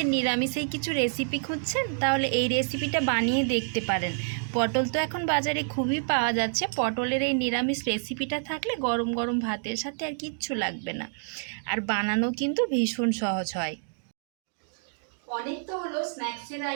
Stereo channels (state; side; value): silent; left; digital silence